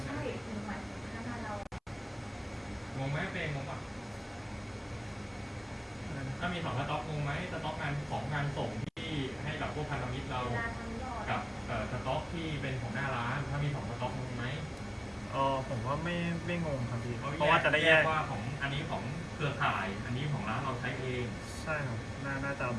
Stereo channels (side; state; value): both; identical; correlation 1.00